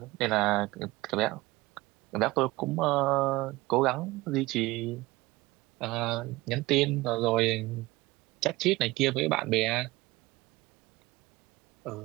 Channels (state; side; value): quieter; left; 20.1 dB